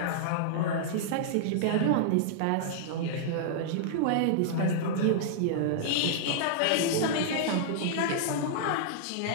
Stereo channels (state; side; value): different; both; correlation -0.01